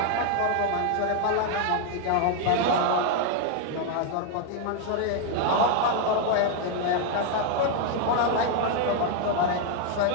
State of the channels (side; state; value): both; different; correlation 0.00